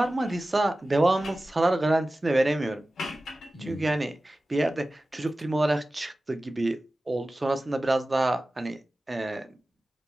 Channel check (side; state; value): both; normal; correlation 0.96